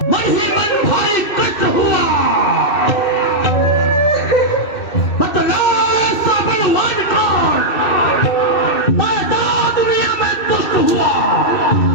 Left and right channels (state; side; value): late; right; 2.6 ms